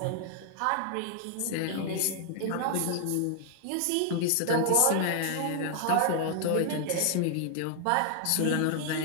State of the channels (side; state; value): both; different; correlation 0.00